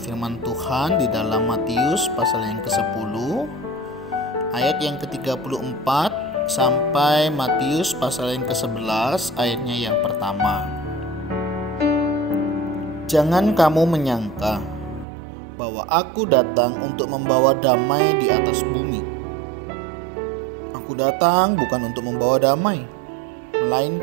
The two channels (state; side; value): drops out; left; at 15.1 s